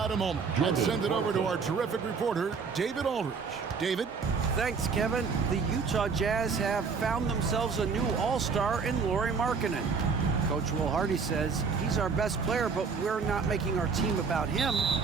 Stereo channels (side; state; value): left; quieter; 5.3 dB